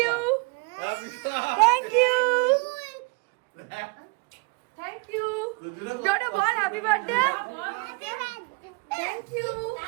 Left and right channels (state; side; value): quieter; left; 30.9 dB